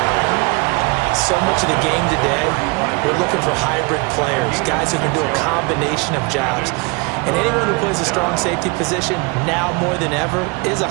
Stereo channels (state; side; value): quieter; left; 28.7 dB